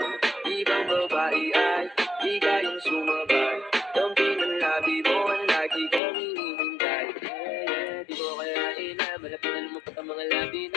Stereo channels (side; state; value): right; drops out; at 6.0 s